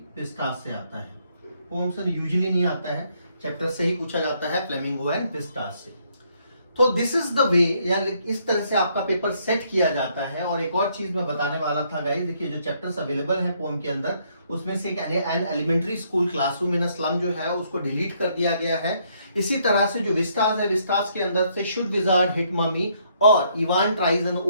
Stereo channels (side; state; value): both; inverted; correlation -0.70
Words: विस्टास से आता है। पोम से यूजुअली नहीं आता है, चैप्टर से ही पूछा जाता है फ्लेमिंगो एंड विस्टास से। तो दिस इज द वे, या इस तरह से आपका पेपर सेट किया जाता है। और एक और चीज मैं बताने वाला था गाइस, देखिए जो चैप्टर्स अवेलेबल हैं पोम के अंदर, उसमें से an elementary school classroom in a slum जो है उसको डिलीट कर दिया गया है। इसी तरह से जो विस्टास है, विस्टास के अंदर से शुड विजार्ड हिट ममी और Evan tries and